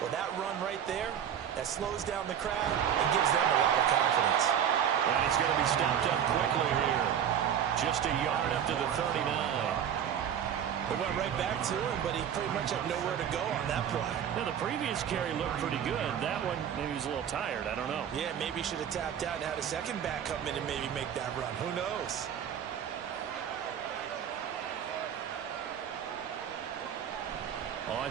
that run right there, that slows down the crowd and gives them a lot of confidence. And he's going to be stopped up quickly here. Just a yard up to the 39. They went right back to him, but he pretty much had nowhere to go on that play. Now, the previous carry looked pretty good. That one, maybe he was a little tired. I don't know. Yeah, maybe he should have tapped out and had a second back come in and maybe make that run. Who knows?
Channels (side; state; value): left; quieter; 9.1 dB